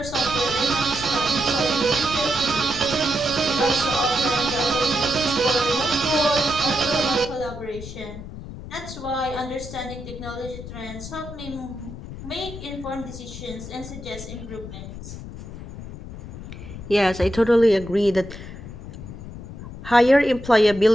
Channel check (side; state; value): left; noise; rumble, 11 dB below the sound